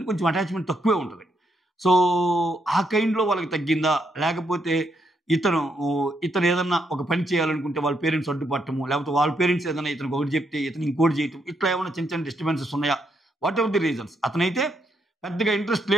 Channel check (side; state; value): both; normal; correlation 0.78